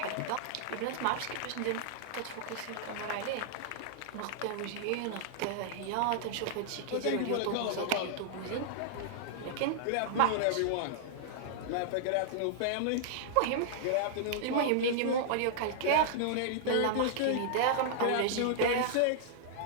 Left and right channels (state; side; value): different; both; correlation -0.01